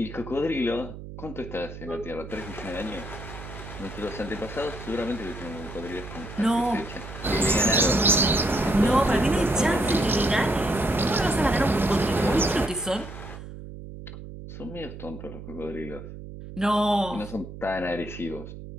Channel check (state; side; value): noise; right; hum, 12 dB below the sound